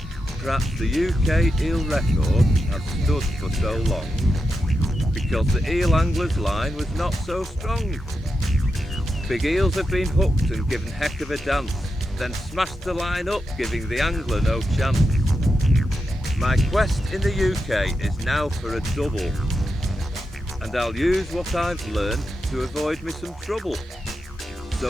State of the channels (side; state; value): both; normal; correlation 0.88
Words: Perhaps the UK eel record has stood for so long because the eel angler's line was not so strong. Big eels have been hooked and given heck of a dance, then smashed the line up, giving the angler no chance. My quest in the UK is now for a double, and I'll use what I've learned to avoid me some trouble.